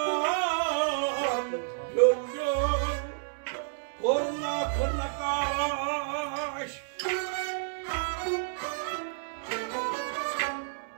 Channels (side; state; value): left; silent; digital silence